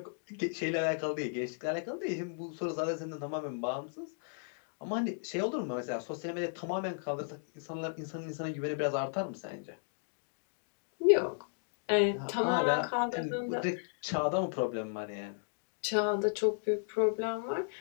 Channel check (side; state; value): right; silent; digital silence